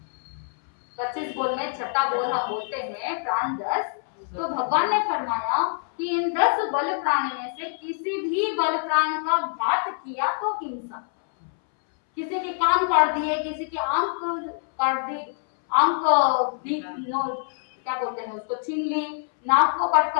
25 बोल में छठा बोल हम बोलते हैं प्राण 10। तो भगवान ने फरमाया कि इन 10 बल प्राण में से किसी भी बल प्राण का घात किया तो हिंसा। किसी के कान काट दिए, किसी के आंख काट दी, आंख क्या बोलते हैं उसको, छीन ली, नाक को कट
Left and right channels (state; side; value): silent; right; 62 dB below the other